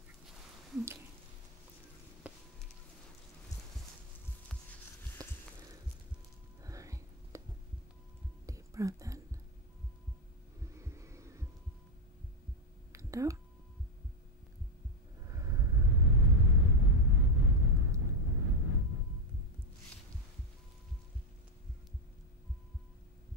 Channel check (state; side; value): normal; both; correlation 0.05